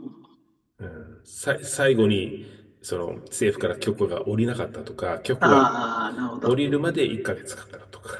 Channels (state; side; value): identical; both; correlation 1.00